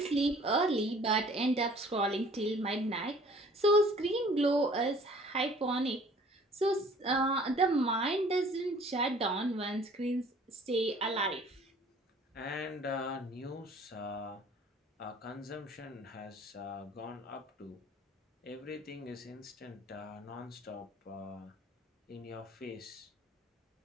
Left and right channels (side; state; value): both; normal; correlation 0.53